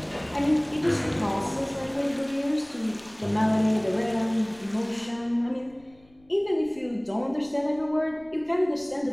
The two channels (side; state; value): left; noise; rumble, 28 dB below the sound